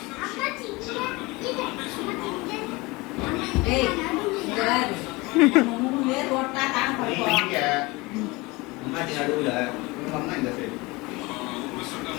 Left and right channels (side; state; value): right; quieter; 23.6 dB